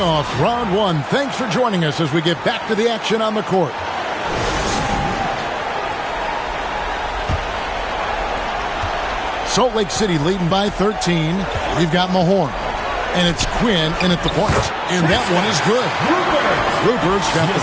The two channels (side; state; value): both; identical; correlation 1.00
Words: round one. Thanks for joining us as we get back to the action on the court. Salt Lake City leading by 13. We've got Mahorn. And it's Quinn in at the point. And that one is good. Rupert's got